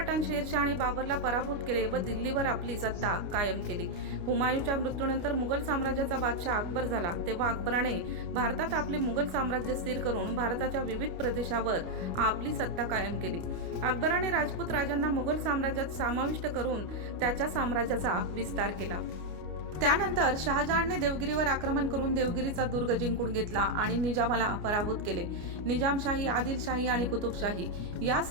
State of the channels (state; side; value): late; left; 29 ms